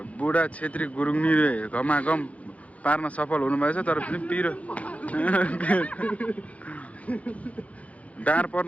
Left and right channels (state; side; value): late; right; 0.066 ms